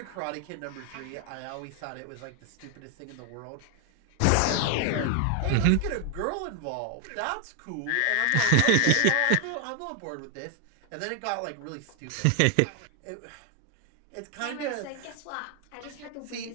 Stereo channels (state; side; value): different; both; correlation 0.01